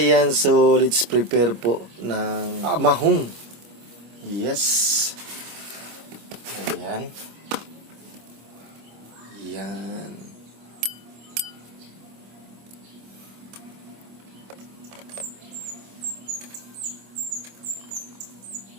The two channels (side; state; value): left; late; 25 ms